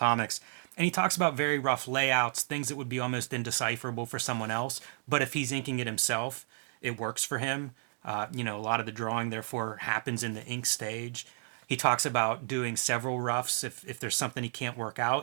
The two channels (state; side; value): silent; left; digital silence